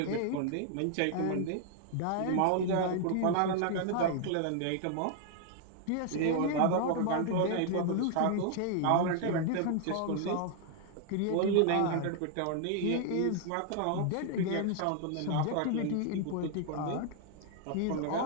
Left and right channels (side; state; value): both; different; correlation 0.00